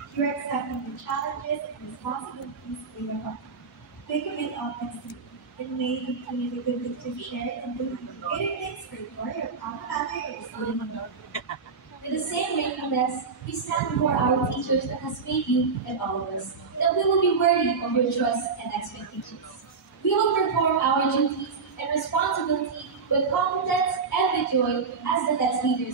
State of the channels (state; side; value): quieter; left; 5.1 dB